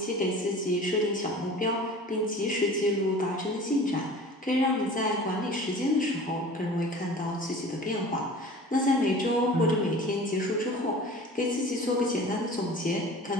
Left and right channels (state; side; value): normal; both; correlation 0.41